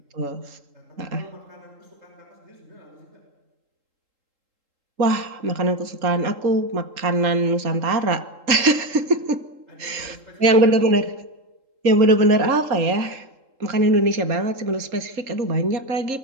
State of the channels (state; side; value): late; left; 3.8 ms